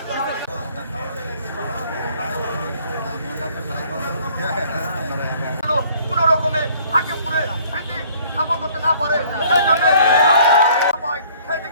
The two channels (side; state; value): both; inverted; correlation -0.57